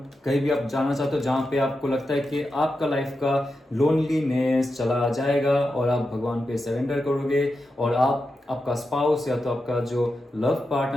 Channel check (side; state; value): both; normal; correlation 0.89